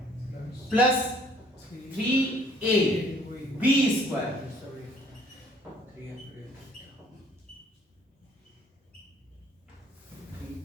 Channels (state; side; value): normal; both; correlation 0.59